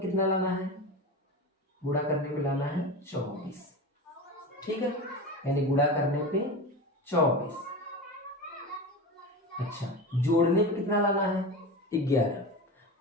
लाना है, गुणा करने पे लाना है 24, ठीक है, यानी गुणा करने पे 24। अच्छा जोड़ने पे कितना लाना है, 11,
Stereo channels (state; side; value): normal; both; correlation 0.26